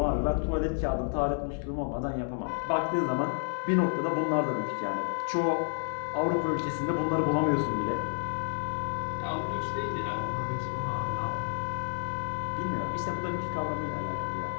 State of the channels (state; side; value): silent; right; 58 dB below the other